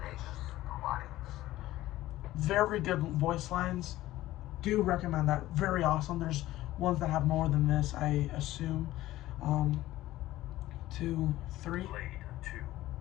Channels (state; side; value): quieter; right; 15.7 dB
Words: Alliance? Very good voice lines. Do recommend that. Very awesome. There's ones that have more than this, I assume. 2, 3. Blade